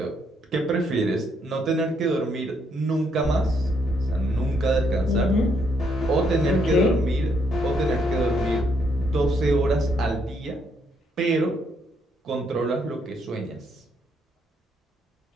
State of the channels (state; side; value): normal; both; correlation 0.73